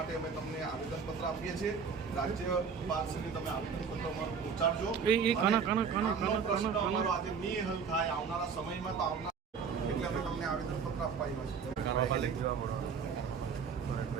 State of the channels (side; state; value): left; quieter; 6.1 dB